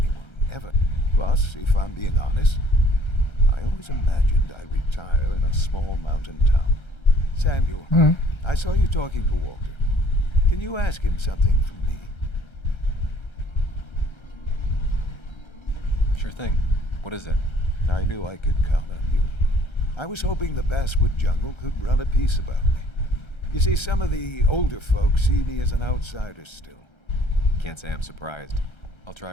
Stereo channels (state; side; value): late; right; 1.3 ms